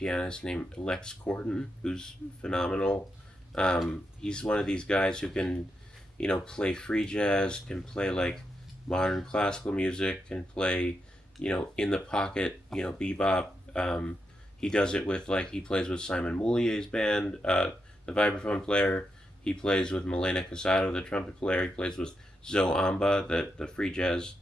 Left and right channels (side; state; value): both; normal; correlation 0.85